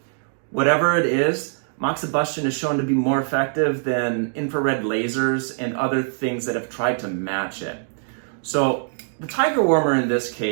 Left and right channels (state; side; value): silent; left; digital silence